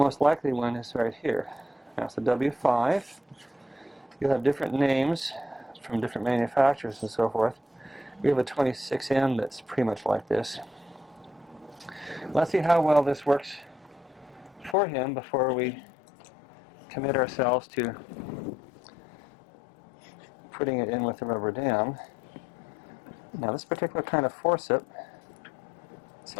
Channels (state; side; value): drops out; right; at 14.8 s